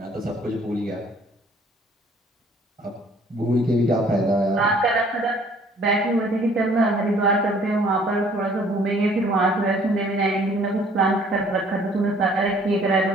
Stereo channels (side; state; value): both; normal; correlation 0.57